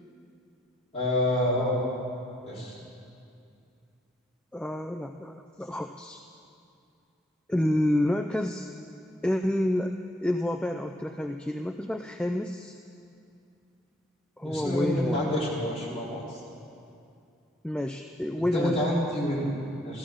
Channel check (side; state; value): both; normal; correlation 0.71